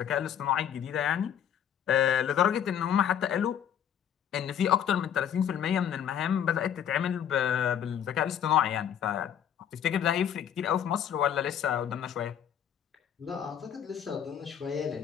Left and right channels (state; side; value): quieter; right; 9.2 dB